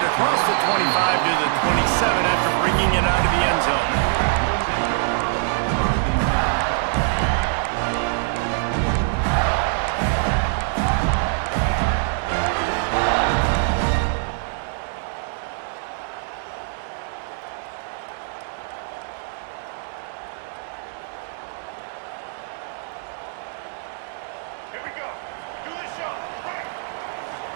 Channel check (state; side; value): silent; left; 63 dB below the other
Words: across the 25 to the 27 after bringing it out of the end zone.